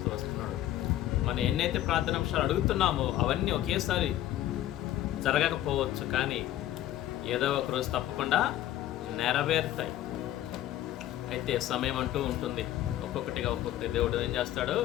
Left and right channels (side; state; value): right; quieter; 13.3 dB